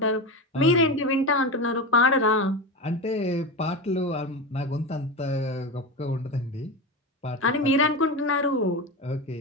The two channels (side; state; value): both; normal; correlation 0.20